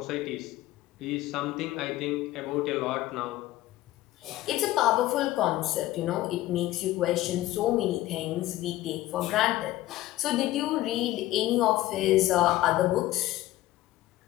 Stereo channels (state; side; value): quieter; right; 16.0 dB